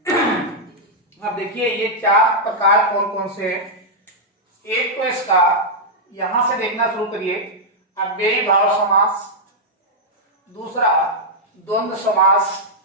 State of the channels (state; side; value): normal; both; correlation -0.06